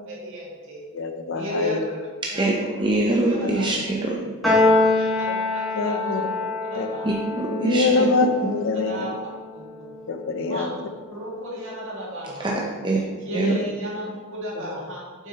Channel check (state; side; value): normal; both; correlation 0.34